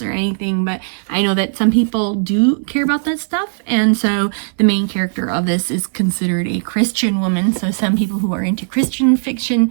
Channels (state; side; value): silent; left; 64 dB below the other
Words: or anything, but I know that some people do care about that stuff, and so the main character of this is considered a Christian woman, so some people who are into Christian fiction